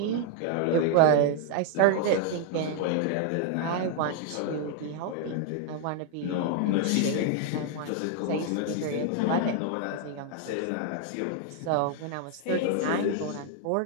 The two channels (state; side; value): different; both; correlation 0.00